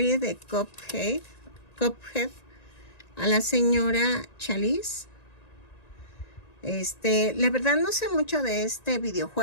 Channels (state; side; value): late; right; 1.9 ms